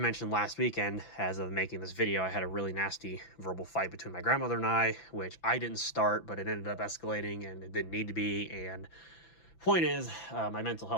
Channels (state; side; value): late; right; 6.0 ms